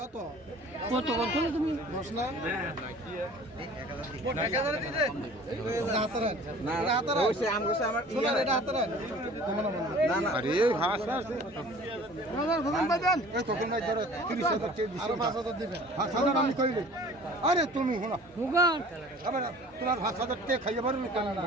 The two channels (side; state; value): both; normal; correlation 0.47